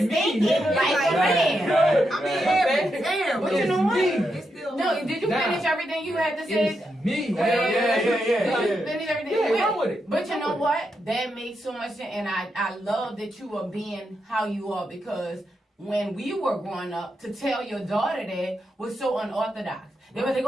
thinking like a man. I mean, damn. But you know what? It's still No, did you Nah. finish everything you had to say? It's me. Yeah. Did you finish everything? Yeah, you run had? with it. But you Run know with it. what? That makes so much sense, and I love that you are being how you are, because when we were growing up to tell your daughter that was so unorthodox. They were like,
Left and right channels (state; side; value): normal; both; correlation 0.84